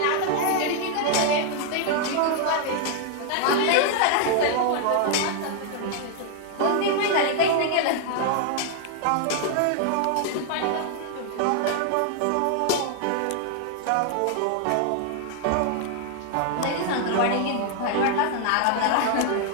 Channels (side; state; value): both; different; correlation 0.00